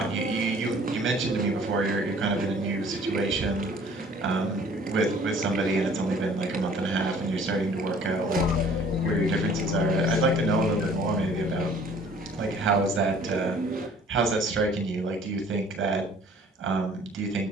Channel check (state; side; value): normal; both; correlation 0.53